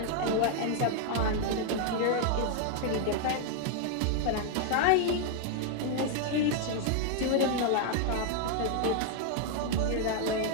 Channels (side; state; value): both; different; correlation 0.00